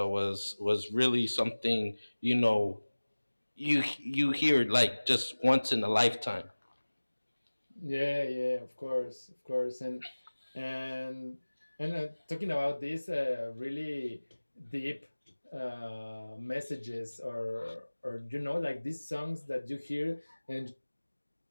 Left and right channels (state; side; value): inverted; both; correlation -1.00